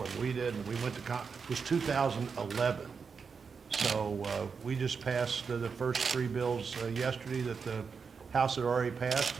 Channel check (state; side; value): quieter; left; 5.6 dB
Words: and we did, and we went to it was 2011. So we just passed the first three bills yesterday that the House had already passed,